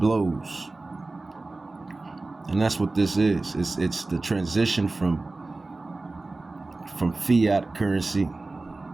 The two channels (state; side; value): quieter; left; 3.3 dB